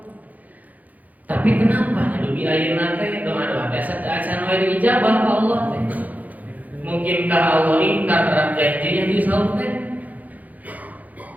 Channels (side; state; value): left; late; 0.079 ms